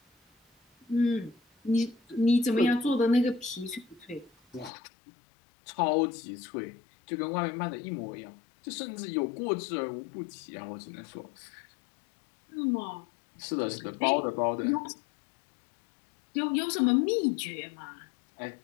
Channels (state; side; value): drops out; right; at 4.7 s